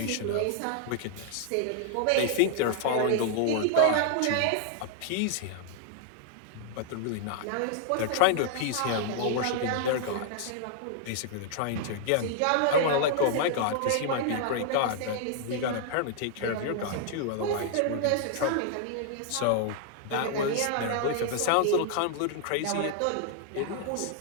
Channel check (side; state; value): both; different; correlation -0.01